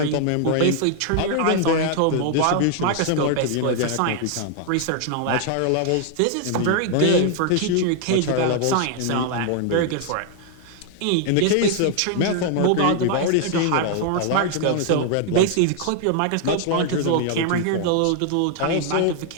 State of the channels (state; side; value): different; both; correlation 0.00